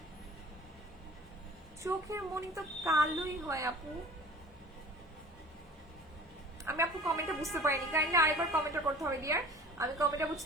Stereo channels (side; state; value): both; normal; correlation 0.43